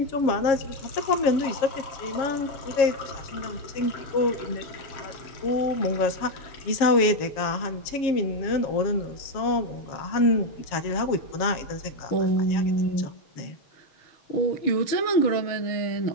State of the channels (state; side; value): late; right; 7.3 ms